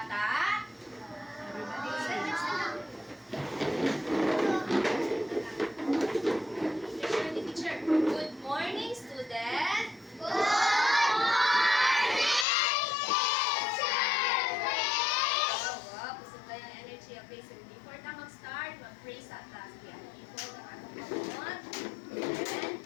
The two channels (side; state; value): right; drops out; at 12.5 s